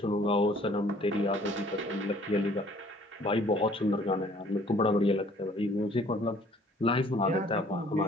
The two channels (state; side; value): normal; both; correlation 0.57